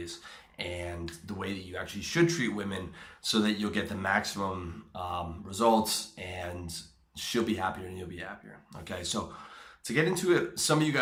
and the way that you actually should treat women so that you'll get the maximum results, and she'll be happier and you'll be happier. Okay, so to get into it, some of you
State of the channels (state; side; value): identical; both; correlation 1.00